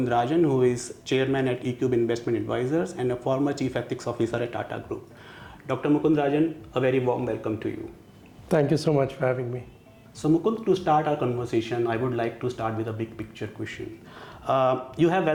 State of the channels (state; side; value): identical; both; correlation 1.00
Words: Rajan, who is Chairman at ECube Investment Advisors and a former Chief Ethics Officer at Tata Group. Dr. Mukund Rajan, a very warm welcome to you. Thank you so much for having me. So Mukund, to start our conversation, I would like to start with a big picture question. You have